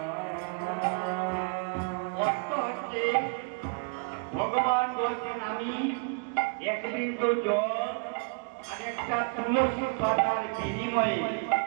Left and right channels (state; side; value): quieter; left; 36.0 dB